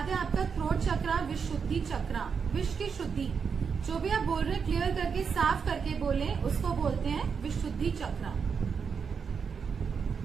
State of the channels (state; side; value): quieter; left; 6.1 dB